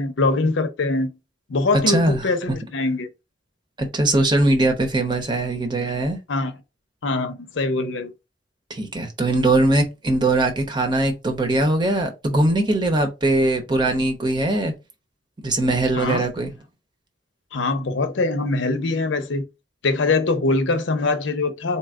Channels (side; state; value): both; normal; correlation 0.48